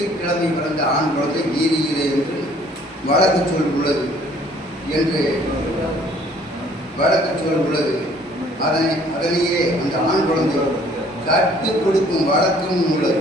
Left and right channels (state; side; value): normal; both; correlation 0.58